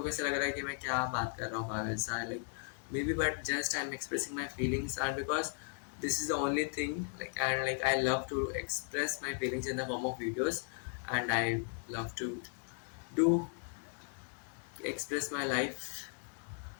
ऐसे लग रहा है कि मैं क्या बात कर रहा हूँ पागल सा, like may be, but just I am expressing my feelings and because this is the only thing like, and like I love to express my feelings in the form of videos, and I love to do express my life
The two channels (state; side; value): silent; right; 53 dB below the other